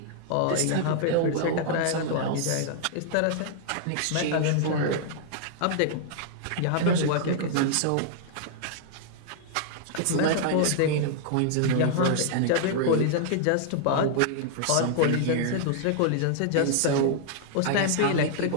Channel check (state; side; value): different; both; correlation -0.01